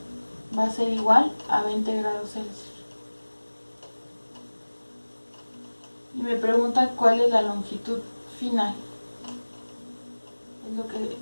va a ser igual a 20 grados Celsius. Y me pregunta cuál es la longitud final. Es lo que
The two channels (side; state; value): both; inverted; correlation -1.00